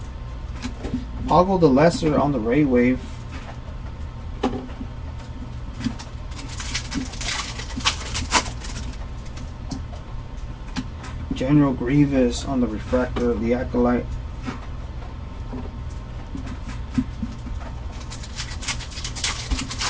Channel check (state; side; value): identical; both; correlation 1.00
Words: Poggle the Lesser on the Ray Wave. General Grievous on the Refractor, the Acolyte.